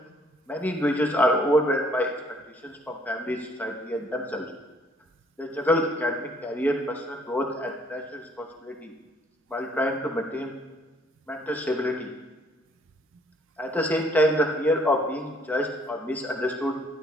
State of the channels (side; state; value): both; normal; correlation 0.63